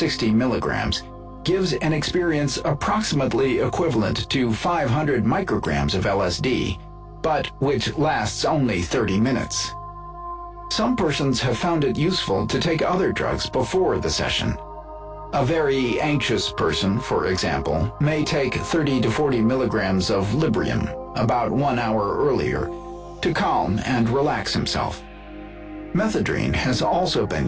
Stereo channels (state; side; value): identical; both; correlation 1.00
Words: milligrams, gives an experience approximately equivalent to 500 micrograms of LSD, but which lasts only 30 minutes. Some persons have found it useful to take other drugs before the session. A very anxious person, for example, may take 30 to 40 milligrams of Librium about 1 hour earlier to calm and relax himself. Methadone has also been